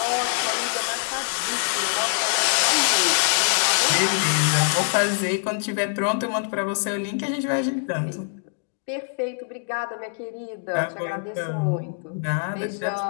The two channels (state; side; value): silent; right; digital silence